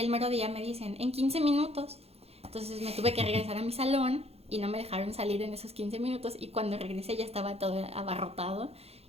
mero día me dicen, en 15 minutos. Entonces me tuve que regresar a mi salón y no me dejaron salir en esos 15 minutos y cuando regresé ya estaba todo abarrotado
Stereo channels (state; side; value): late; left; 0.29 ms